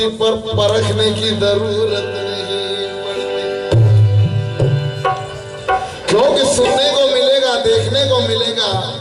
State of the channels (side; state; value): both; identical; correlation 1.00